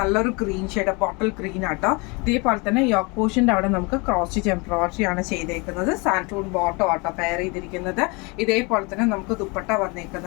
ഗ്രീൻ ഷെയ്ഡ്, ബോട്ടിൽ ഗ്രീൻ ആട്ടോ. ഇതേപോലെ തന്നെ യോക്ക് പോർഷൻ്റെ അവിടെ നമുക്ക് ക്രോസ് സ്റ്റിച്ച് എംബ്രോയിഡറി ആണ് ചെയ്തേക്കുന്നത്. സാൻറ്റൂൺ ബോട്ടോ ആട്ടോ പെയർ ചെയ്തിരിക്കുന്നത്. ഇതേപോലെ തന്നെ നമുക്ക് ദുപ്പട്ട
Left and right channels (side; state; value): right; quieter; 28.7 dB